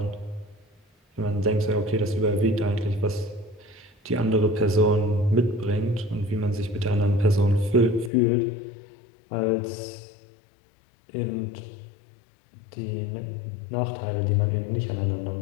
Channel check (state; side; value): drops out; right; at 8.1 s